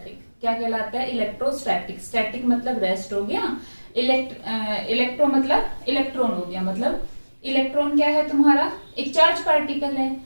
क्या कहलाता है, इलेक्ट्रोस्टैटिक। स्टैटिक मतलब रेस्ट हो गया, इलेक्ट्रो मतलब इलेक्ट्रॉन हो गया। मतलब इलेक्ट्रॉन क्या है तुम्हारा, एक चार्ज पार्टिकल है।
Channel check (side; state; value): both; inverted; correlation -1.00